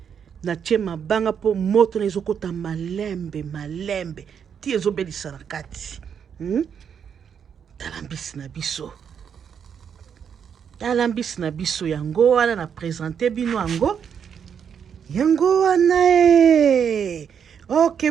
natie mabanga po moto na ezokota malembe ti ezobelisa na kati tala mbisi na biso yango wana na présente bino yango wana ok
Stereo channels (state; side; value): quieter; left; 7.6 dB